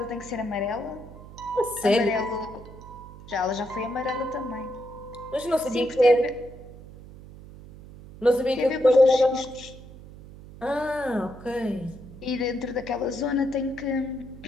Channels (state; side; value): noise; right; hum, 17 dB below the sound